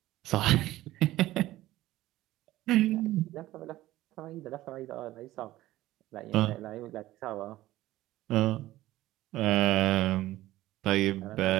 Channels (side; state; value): left; quieter; 16.0 dB